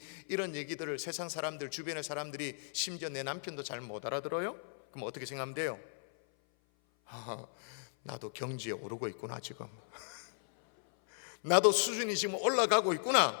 이런 얘기들을 세상 사람들, 주변의 사람들이, 심지어 내 남편도 잘 못 알아들어요? 그럼 어떻게 생각하면 돼요? 나도 경지에 오르고 있구나 지금. 나도 수준이 지금 올라가고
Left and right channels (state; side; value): silent; right; 54 dB below the other